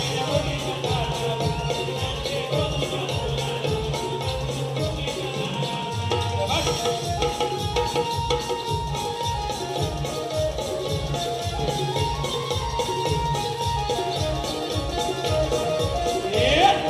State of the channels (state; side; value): identical; both; correlation 1.00